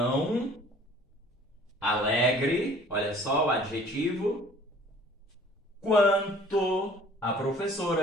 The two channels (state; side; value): normal; both; correlation 0.52